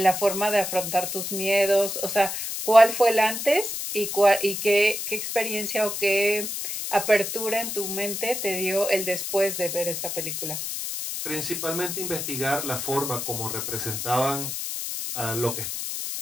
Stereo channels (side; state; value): left; noise; hiss, 4 dB below the sound